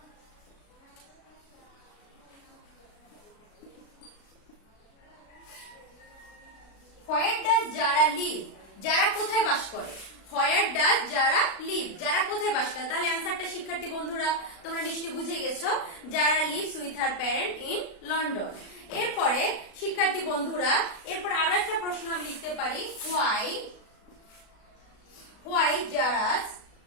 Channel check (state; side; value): late; right; 36 ms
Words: হোয়ার ডাজ জারা লিভ? যারা কোথায় বাস করে? হোয়ার ডাজ যারা লিভ? যারা কোথায় বাস করে? তাহলে অ্যান্সারটা শিক্ষার্থী বন্ধুরা তোমরা নিশ্চয়ই বুঝে গেছো, যারা lives with her parent in London. এরপরে শিক্ষার্থী বন্ধুরা, এরপর আরো একটা প্রশ্ন আমি লিখতে পারি। Why Zara's,